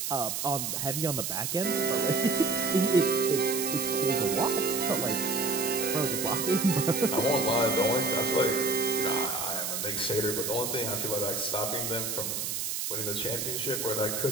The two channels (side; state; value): right; noise; hiss, 2 dB below the sound